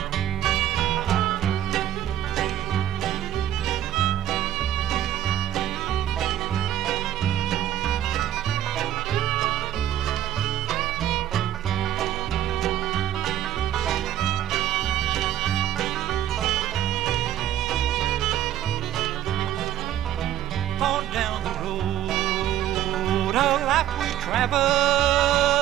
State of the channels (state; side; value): quieter; left; 12.0 dB